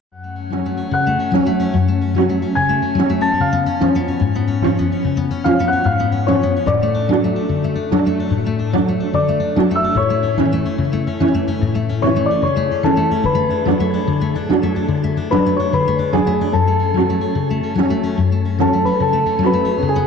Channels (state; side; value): normal; both; correlation 0.60